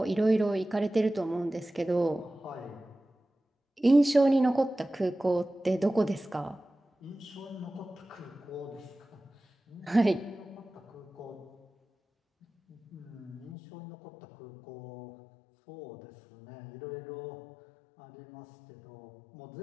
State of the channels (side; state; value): right; drops out; at 13.6 s